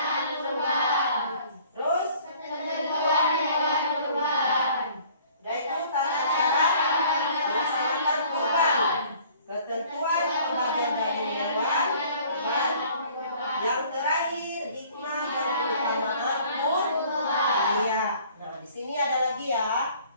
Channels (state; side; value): inverted; both; correlation -0.53